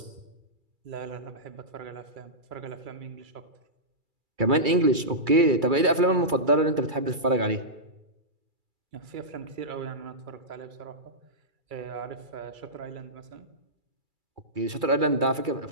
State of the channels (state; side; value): late; left; 2.3 ms